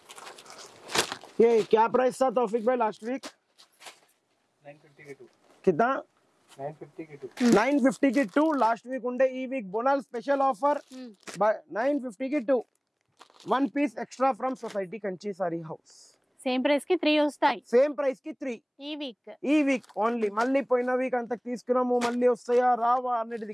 ये क्या प्राइस था तौफिक भाई लास्ट वीक? 950 के 2. कितना? 950 के 2. 950 की 2 लास्ट वीक ఉండే. ఈ వీక్ బోనల్ స్పెషల్ ఆఫర్ 950 की 2 1 piece extra from society Kanchi sari house. Same price కి 3 వస్తాయి. సేమ్ ప్రైస్ కి 3 ఈ వీక్ ఓన్లీ. మళ్ళీ పోయిన వీక్ అంత తీసుకున్నాము మళ్ళీ వస్తాయా రావా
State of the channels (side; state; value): both; identical; correlation 1.00